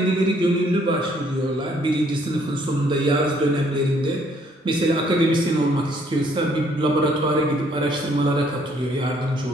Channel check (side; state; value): both; normal; correlation 0.65